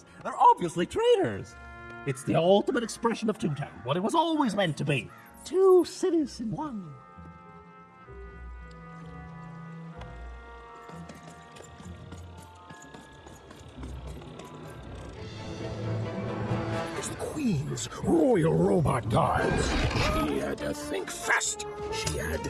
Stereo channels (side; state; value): both; identical; correlation 1.00